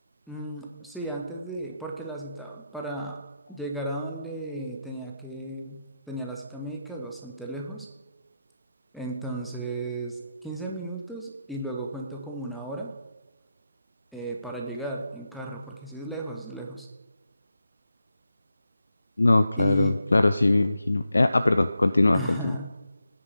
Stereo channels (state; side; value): inverted; both; correlation -0.87